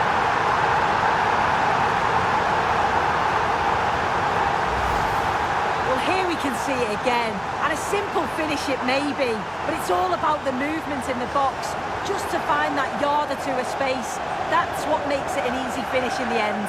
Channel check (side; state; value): both; identical; correlation 1.00